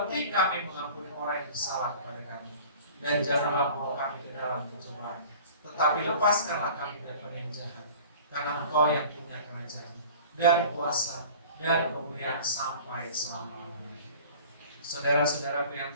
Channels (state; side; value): inverted; both; correlation -0.44